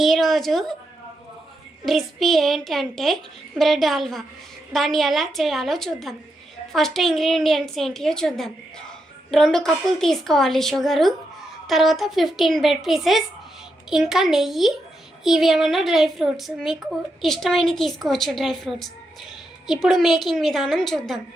ఈరోజు రెసిపీ ఏంటంటే బ్రెడ్ హల్వా. దాన్ని ఎలా చేయాలో చూద్దాం. ఫస్ట్ ఇంగ్రీడియంట్స్ ఏంటియో చూద్దాం. 2 కప్పులు తీసుకోవాలి షుగరు, తర్వాత 15 బ్రెడ్ పీసెస్, ఇంకా నెయ్యి. ఇవి ఏమన్నా డ్రై ఫ్రూట్స్, మీకు ఇష్టమైనవి తీసుకోవచ్చు డ్రై ఫ్రూట్స్. ఇప్పుడు మేకింగ్ విధానం చూద్దాం.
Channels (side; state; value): both; normal; correlation 0.84